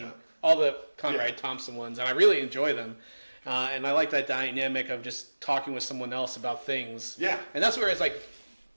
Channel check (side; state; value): both; inverted; correlation -1.00